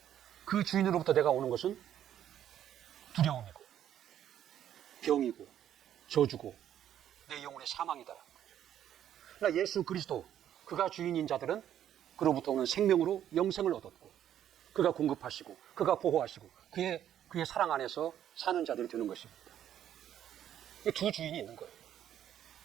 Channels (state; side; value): quieter; left; 10.6 dB